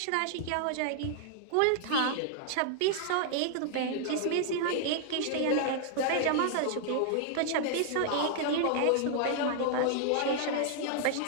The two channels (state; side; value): different; both; correlation 0.00